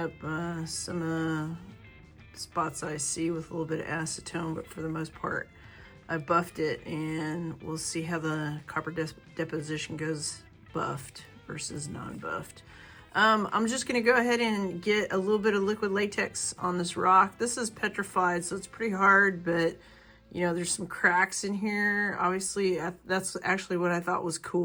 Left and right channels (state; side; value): identical; both; correlation 1.00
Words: some spots I see with a little bit of acetone, but for the most part I buffed it, and we'll see how the copper deposition goes buffed versus non-buffed. I'm just gonna go ahead and get a little bit of liquid latex on this rock. This is petrified, so it's pretty hard, but you know, there's some cracks in here. Obviously, that's actually what I thought was